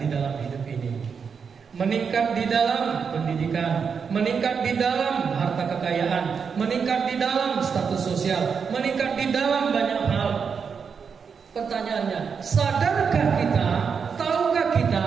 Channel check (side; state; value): left; quieter; 6.2 dB